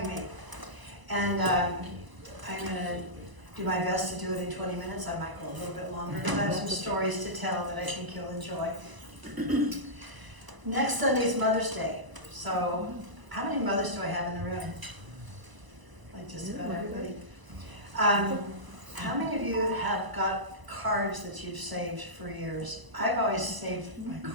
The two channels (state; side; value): late; left; 1.0 ms